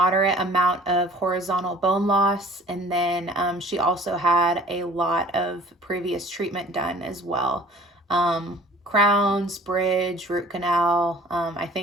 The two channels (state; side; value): normal; both; correlation 0.50